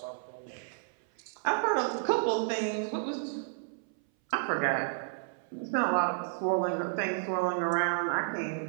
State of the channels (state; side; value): silent; left; 57 dB below the other